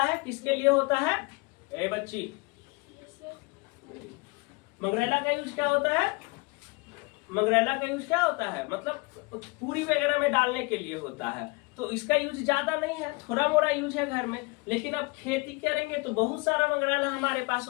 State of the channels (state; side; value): quieter; right; 27.4 dB